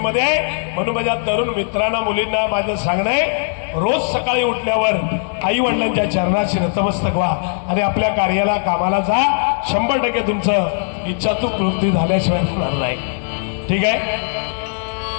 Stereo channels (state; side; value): silent; right; 67 dB below the other